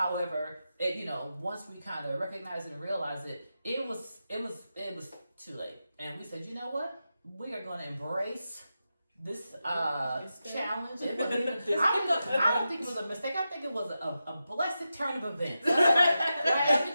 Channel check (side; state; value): both; inverted; correlation -0.90